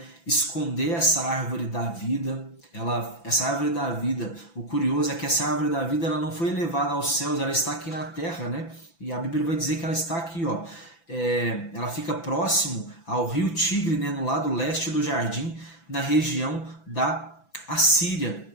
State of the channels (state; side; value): late; right; 5.9 ms